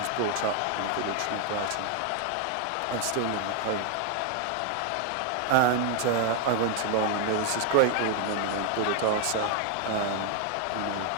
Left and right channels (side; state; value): both; different; correlation 0.01